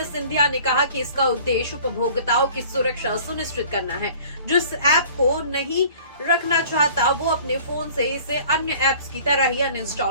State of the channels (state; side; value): inverted; both; correlation -0.49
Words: सिंधिया ने कहा कि इसका उद्देश्य उपभोक्ताओं की सुरक्षा सुनिश्चित करना है। जो इस ऐप को नहीं रखना चाहता वो अपने फोन से इसे अन्य ऐप्स की तरह ही